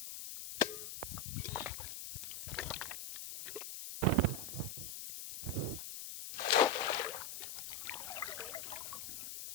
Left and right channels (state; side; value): noise; left; hiss, 7 dB below the sound